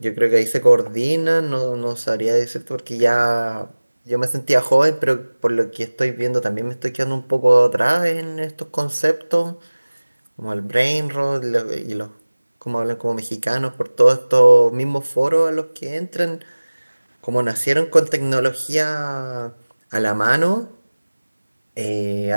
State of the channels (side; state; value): both; inverted; correlation -1.00